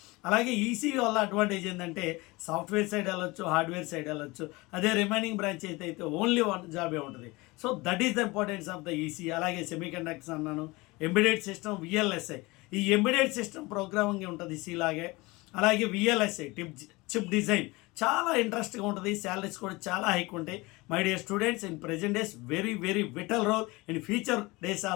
అలాగే ఈసీ వల్ల అడ్వాంటేజ్ ఏంటంటే సాఫ్ట్వేర్ సైడ్ వెళ్ళొచ్చు, హార్డ్వేర్ సైడ్ వెళ్ళొచ్చు. అదే రిమైనింగ్ బ్రాంచ్ అయితే ఓన్లీ 1 జాబే ఉంటుంది. So that is the importance of the EC. అలాగే సెమీ కండక్టర్స్ అన్నాను, ఎంబెడెడ్ సిస్టమ్, విఎల్ఎస్ఐ. ఈ ఎంబెడెడ్ సిస్టమ్ ప్రోగ్రామింగ్ ఉంటుంది సి లాగే. అలాగే విఎల్ఎస్ఐ చిప్ డిజైన్ చాలా ఇంట్రెస్ట్గా ఉంటుంది. శాలరీస్ కూడా చాలా హైక్ ఉంటాయి. My dear students, in present days very very vital role. In future days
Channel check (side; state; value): right; quieter; 23.1 dB